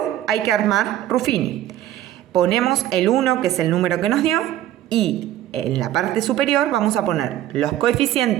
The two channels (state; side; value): quieter; left; 12.9 dB